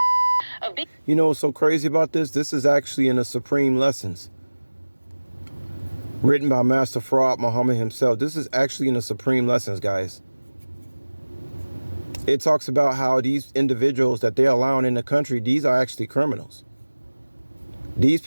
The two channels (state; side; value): inverted; both; correlation -1.00